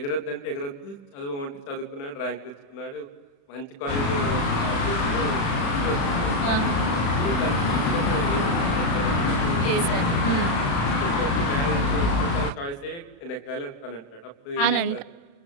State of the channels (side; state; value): right; late; 35 ms